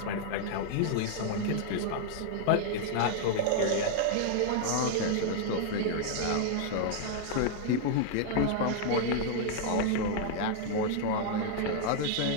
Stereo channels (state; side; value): different; both; correlation 0.00